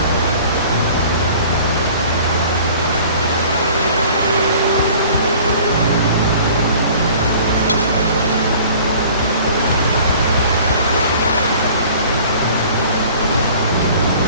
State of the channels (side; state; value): both; inverted; correlation -0.48